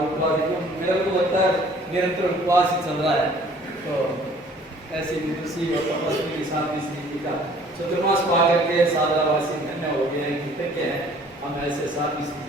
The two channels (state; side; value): normal; both; correlation 0.55